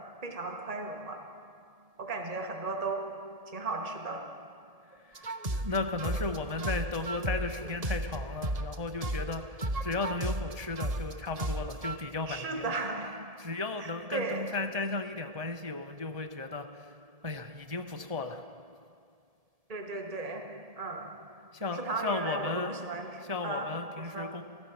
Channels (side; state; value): left; late; 1.7 ms